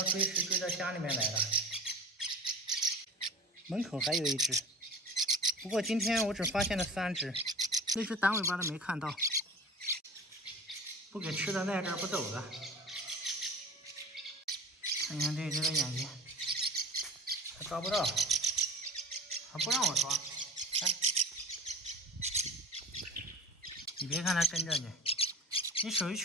追食追到家里面来了。门口还有一只，不过今天我只发现了3只，那只短尾巴的没看到。不给吃的赖这儿不走了。看看这只的眼睛，还抓不到，还不让我抓。看，你别看它跟着你，你手一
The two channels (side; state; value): both; normal; correlation 0.36